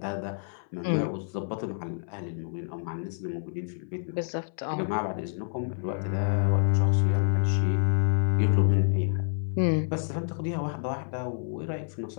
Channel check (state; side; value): silent; right; 58 dB below the other